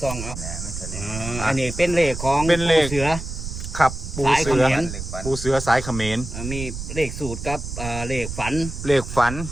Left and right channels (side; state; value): right; noise; rumble, 7 dB below the sound